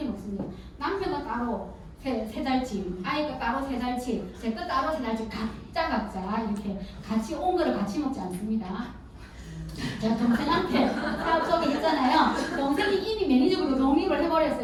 먹습니다. 남편은 따로 세 달치, 아이가 따로 세 달치, 제 거 따로 세 달치 각자 이렇게 같이 온 거를 같이 먹지 않습니다. 제가 동생한테 사업 소개했잖아요. 동생이 이미 매니저로 독립을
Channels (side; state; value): both; identical; correlation 1.00